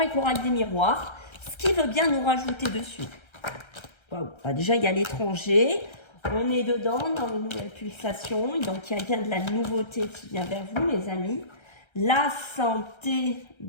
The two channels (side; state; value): right; late; 1.3 ms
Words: l'oracle des miroirs, ce qui veut bien nous rajouter dessus. Waouh, bah déjà, il y a l'étranger, on est dedans, dans une nouvelle pulsation, donc il y a bien de la nouveauté qui vient vers vous, les amis. La santé,